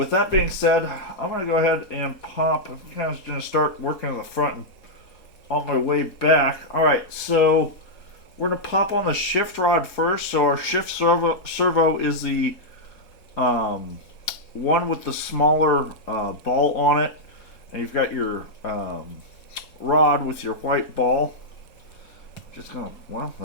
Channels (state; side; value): late; right; 4.8 ms